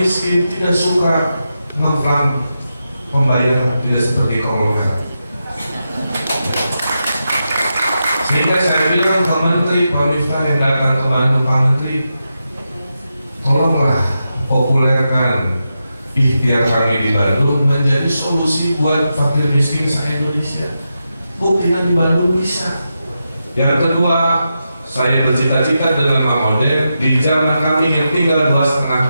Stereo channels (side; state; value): both; inverted; correlation -0.88